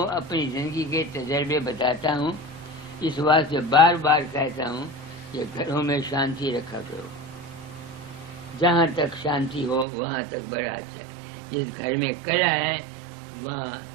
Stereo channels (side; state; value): left; drops out; at 9.9 s